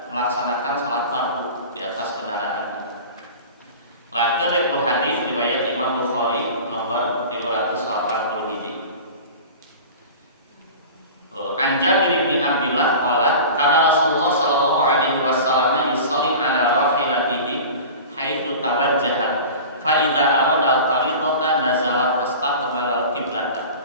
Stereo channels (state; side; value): inverted; both; correlation -0.36